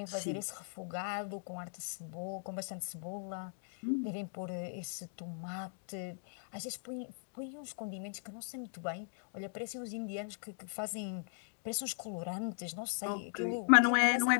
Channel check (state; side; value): silent; right; digital silence